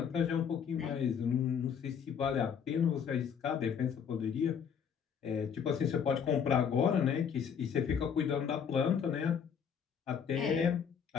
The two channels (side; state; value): right; quieter; 7.4 dB